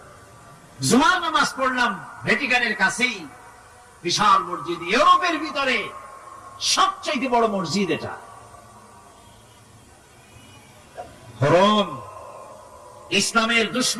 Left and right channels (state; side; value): identical; both; correlation 1.00